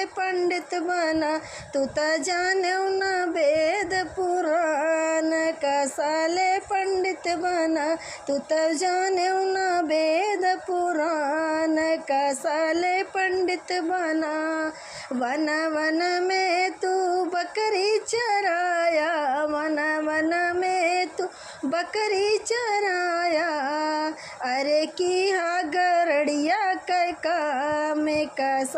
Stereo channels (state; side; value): identical; both; correlation 1.00